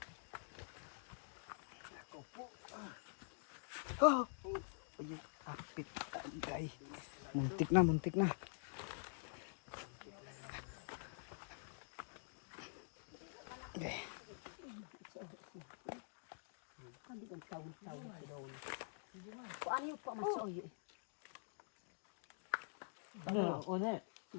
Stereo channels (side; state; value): right; silent; digital silence